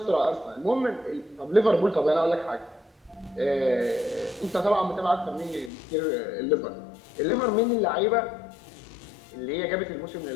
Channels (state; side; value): drops out; right; at 5.7 s